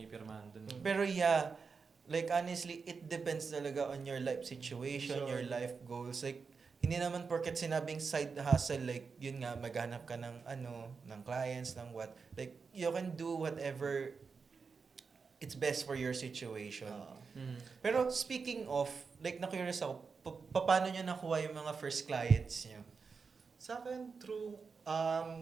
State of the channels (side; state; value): left; quieter; 5.1 dB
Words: dun. Pero yeah, like honestly, it depends talaga on your life situation, Sure. your life goals. Like, hindi naman porket sinabing side hustle, like, yun nga, maghanap ka ng ng clients, ng what. Like, you can do whatever it's best for your situation. Pero speaking of, like, na-curious ako, paano nyo nakuha yung mga first clients nyo? Sa akin, through